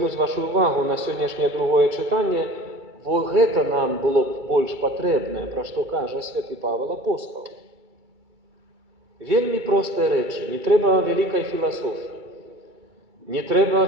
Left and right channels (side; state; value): left; late; 2.3 ms